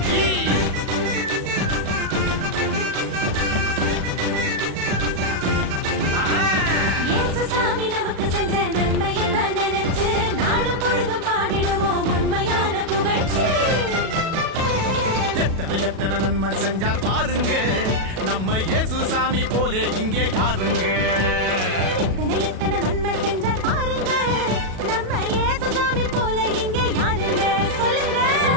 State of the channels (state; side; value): late; left; 37 ms